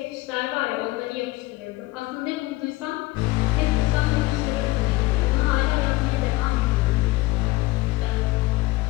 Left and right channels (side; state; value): right; quieter; 19.9 dB